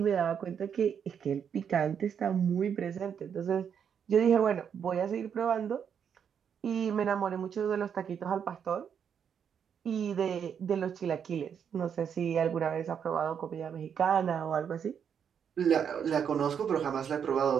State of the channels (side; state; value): left; quieter; 7.7 dB